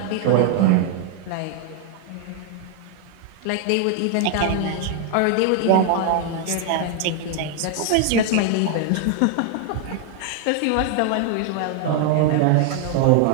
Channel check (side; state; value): both; different; correlation 0.00